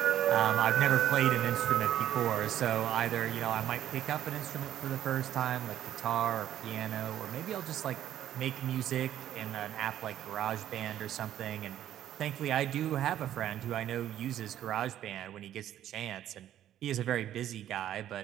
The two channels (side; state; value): left; quieter; 11.6 dB